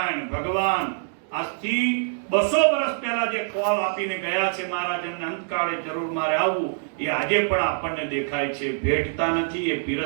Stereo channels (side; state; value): left; silent; digital silence